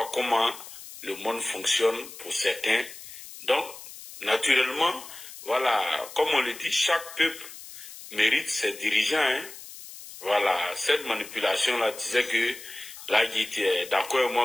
comment le monde fonctionne pour certains. Donc, naturellement, voilà, comme on le dit, chaque peuple mérite ses dirigeants. Hein. Voilà, cette manipulation-là disait que là, il était d'accord avec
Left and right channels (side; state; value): left; noise; hiss, 15 dB below the sound